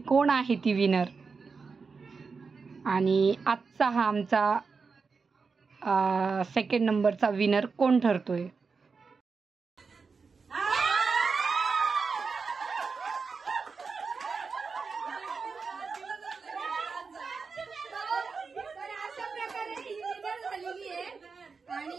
आहे ती विनर. आणि आजचा हा आमचा सेकंड नंबरचा विनर कोण ठरतोय.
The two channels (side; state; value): left; quieter; 4.9 dB